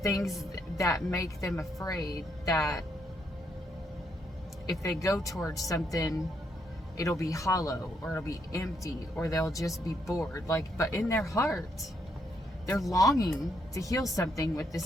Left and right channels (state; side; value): normal; both; correlation 0.75